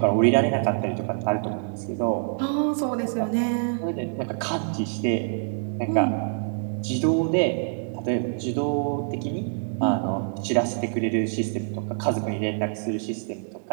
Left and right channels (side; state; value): left; silent; digital silence